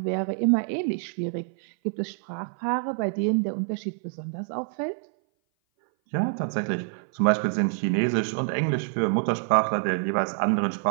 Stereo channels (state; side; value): silent; left; 58 dB below the other